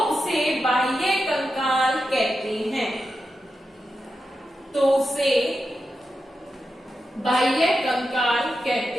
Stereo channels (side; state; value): both; normal; correlation 0.89